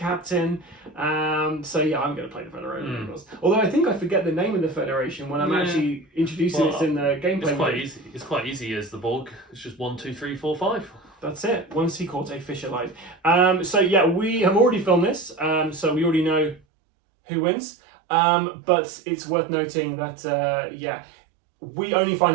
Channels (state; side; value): drops out; left; at 16.6 s